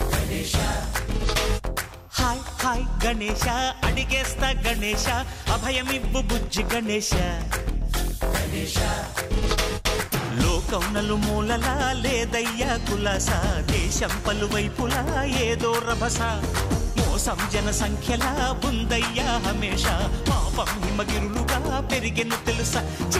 hi hi Ganesha అడిగేస్తా Ganesha అభయమివ్వు బుజ్జి గణేశ లోకం నలుమూలలా లేదయ్యా కులాస దేశం పలువైపులా ఏదో రభస మోసం జన సంఖ్యలా ఉందయ్యా హమేష పాపం హిమగిరులుగా పెరిగెను తెలుసా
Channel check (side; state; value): both; identical; correlation 1.00